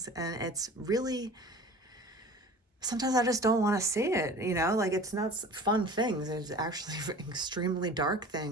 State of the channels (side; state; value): both; normal; correlation 0.41